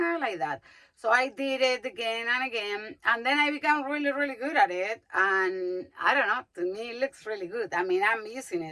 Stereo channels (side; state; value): both; identical; correlation 1.00